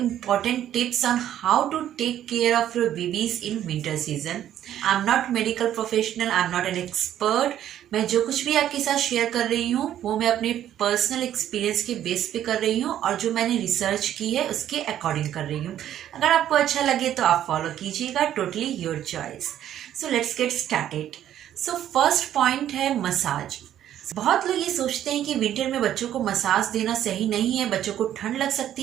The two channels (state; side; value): quieter; left; 11.3 dB